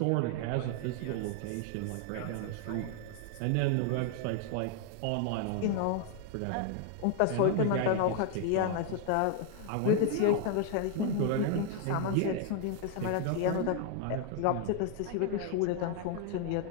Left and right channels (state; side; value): different; both; correlation 0.00